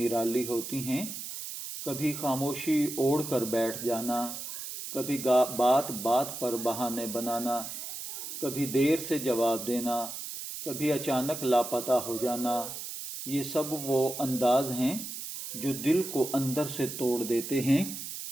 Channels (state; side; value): noise; right; hiss, 8 dB below the sound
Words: ہوتی ہیں۔ کبھی خاموشی اوڑھ کر بیٹھ جانا، کبھی بات بات پر بہانے بنانا، کبھی دیر سے جواب دینا، کبھی اچانک لاپتہ ہو جانا، یہ سب وہ انداز ہیں جو دل کو اندر سے توڑ دیتے ہیں۔